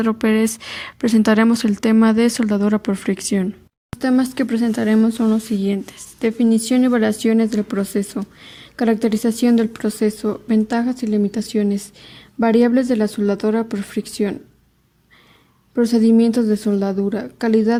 Pérez presentaremos el tema de soldadura por fricción. Los temas que presentaremos son los siguientes: definición y variaciones del proceso, caracterización del proceso, ventajas y limitaciones, variables de la soldadura por fricción, procedimientos de soldadura,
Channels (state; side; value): identical; both; correlation 1.00